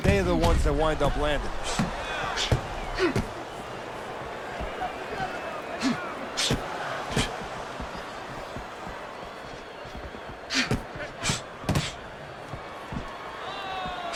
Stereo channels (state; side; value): identical; both; correlation 1.00